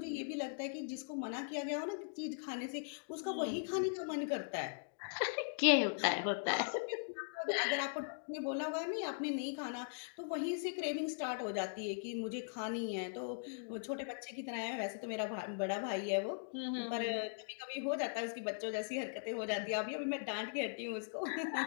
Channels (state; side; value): silent; right; digital silence